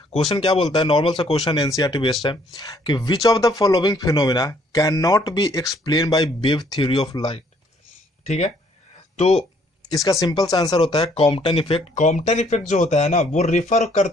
क्वेश्चन क्या बोलता है, नॉर्मल सा क्वेश्चन एनसीईआरटी बेस्ड है कि which of the following phenomena can not be explain by wave theory of light. ठीक है, तो इसका सिंपल सा आंसर होता है कॉम्पटन इफेक्ट। कॉम्पटन इफेक्ट जो होता है ना, वो रिफर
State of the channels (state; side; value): normal; both; correlation 0.65